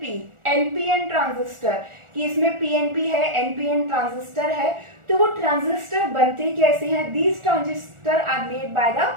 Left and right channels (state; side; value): late; left; 1.4 ms